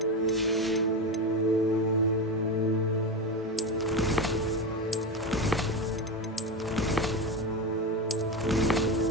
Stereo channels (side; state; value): both; normal; correlation 0.18